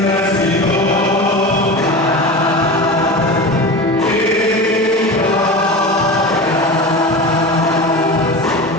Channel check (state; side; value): normal; both; correlation 0.29